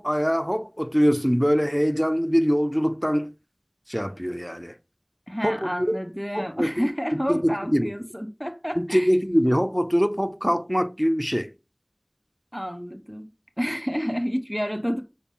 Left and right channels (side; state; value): both; identical; correlation 1.00